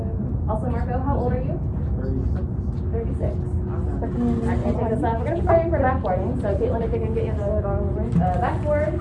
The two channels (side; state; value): both; identical; correlation 1.00